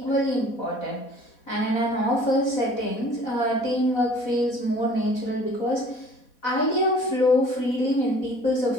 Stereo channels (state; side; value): late; right; 4.2 ms